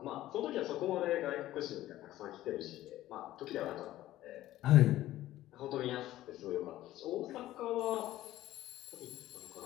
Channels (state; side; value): quieter; right; 14.8 dB